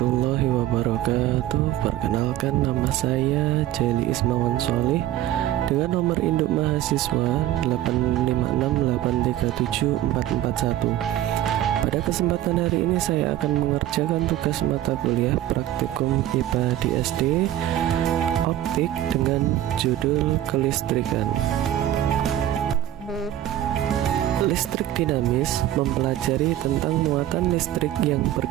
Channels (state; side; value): quieter; left; 13.1 dB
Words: wabarakatuh. Perkenalkan, nama saya Jeli Ismawan Sholih dengan nomor induk mahasiswa 856837441. Pada kesempatan hari ini saya akan mengerjakan tugas mata kuliah praktikum IPA di SD Optik dengan judul kelistrikan. Listrik dinamis mempelajari tentang muatan listrik yang